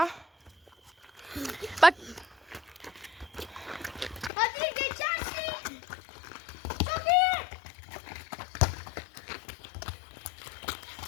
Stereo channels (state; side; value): drops out; right; at 4.3 s